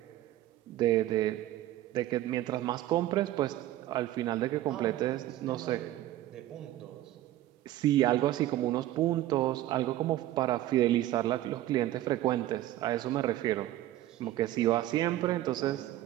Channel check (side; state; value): left; quieter; 14.3 dB